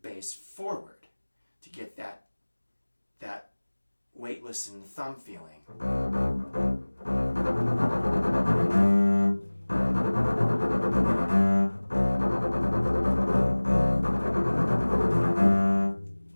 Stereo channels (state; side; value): inverted; both; correlation -1.00